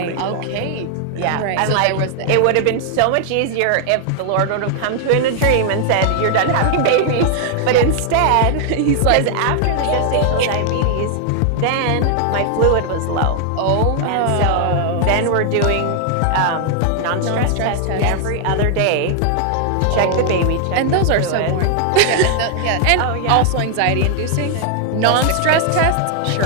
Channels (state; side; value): different; both; correlation 0.00